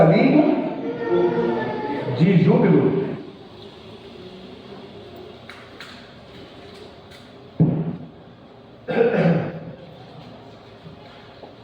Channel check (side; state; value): both; identical; correlation 1.00